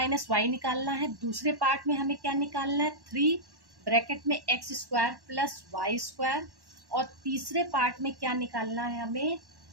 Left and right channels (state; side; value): late; left; 1.1 ms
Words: वाई निकालना है। दूसरे पार्ट में हमें क्या निकालना है, 3 ब्रैकेट में x square plus Y square, और तीसरे पार्ट में क्या निकालना है हमें,